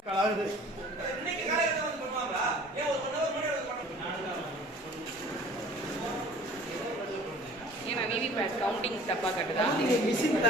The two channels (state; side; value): normal; both; correlation 0.48